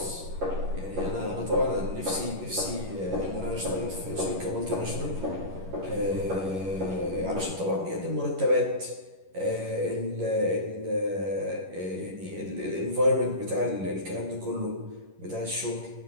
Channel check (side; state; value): left; late; 11 ms